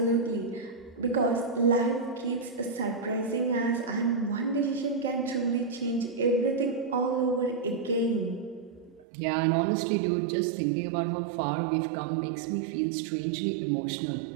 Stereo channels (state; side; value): drops out; left; at 9.1 s